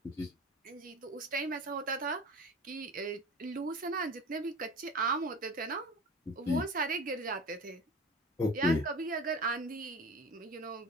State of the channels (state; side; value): normal; both; correlation 0.35